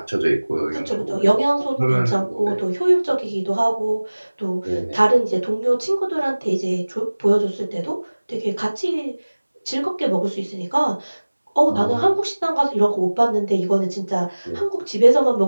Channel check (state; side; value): inverted; both; correlation -1.00